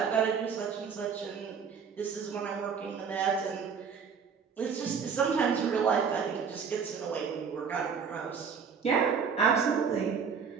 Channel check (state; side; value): quieter; left; 6.3 dB